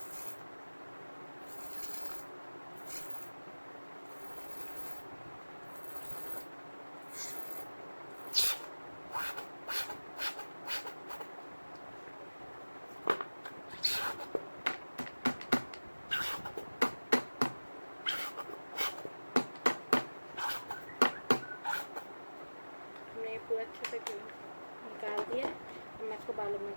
हमने पूरा अच्छे से निकाल दिया है। अब मैं इसको बालों में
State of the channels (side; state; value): both; inverted; correlation -1.00